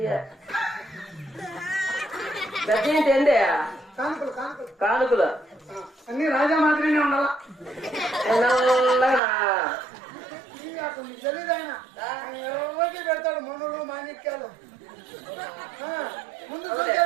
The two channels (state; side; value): drops out; left; at 9.2 s